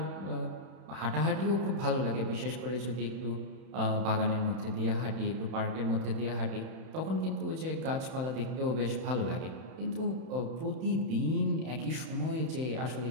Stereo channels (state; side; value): late; left; 31 ms